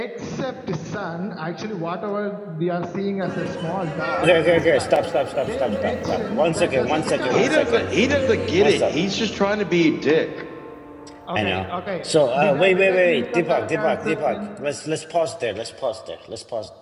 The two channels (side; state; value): both; identical; correlation 1.00